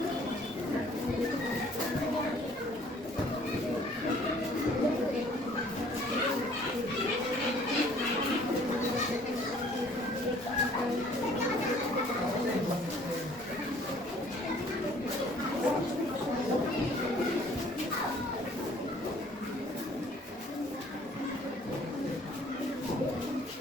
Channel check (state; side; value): normal; both; correlation 0.57